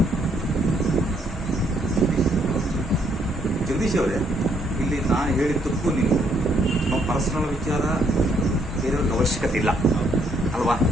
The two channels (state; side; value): normal; both; correlation 0.70